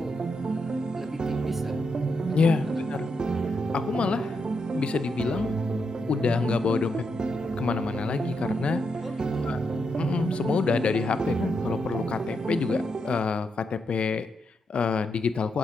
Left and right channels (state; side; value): normal; both; correlation 0.82